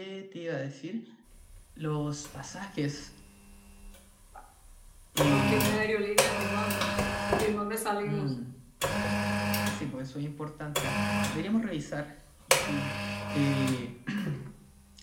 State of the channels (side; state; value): both; identical; correlation 1.00